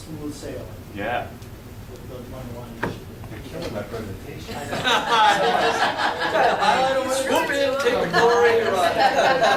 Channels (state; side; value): identical; both; correlation 1.00